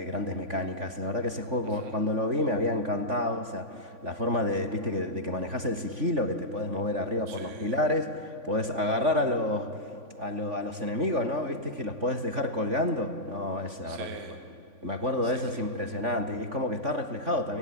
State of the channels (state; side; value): late; left; 3.5 ms